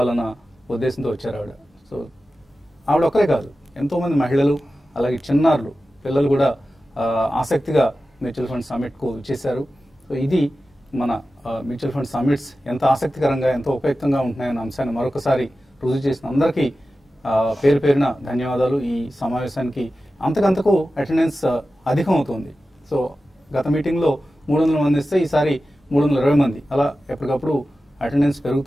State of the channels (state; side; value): normal; both; correlation 0.94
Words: ఉద్దేశంతో వచ్చారు ఆవిడ. సో ఆవిడ ఒక్కరే కాదు, ఎంతోమంది మహిళలు అలాగే చిన్నారులు, పిల్లలు కూడా ఆసక్తిగా మ్యూచువల్ ఫండ్ సమిట్కు చేశారు. సో ఇది మన మ్యూచువల్ ఫండ్ సమిట్స్ ఎంత ఆసక్తికరంగా, ఎంతో ఉపయుక్తంగా ఉంటున్నాయన్న అంశాన్ని మరొకసారి రుజువు చేసిన అందరికీ పేరు పేరున ధన్యవాదాలు. ఈ సమావేశానికి అంతకంతకు అటెండెన్స్ అధికం అవుతుంది. సో గత మీటింగ్లో 300 మంది ఇస్తే ఈసారి 320 మంది, అలా ఎప్పటికప్పుడు అటెండెన్స్